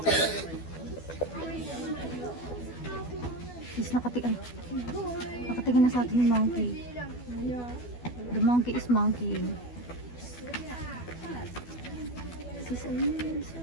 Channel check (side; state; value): right; late; 12 ms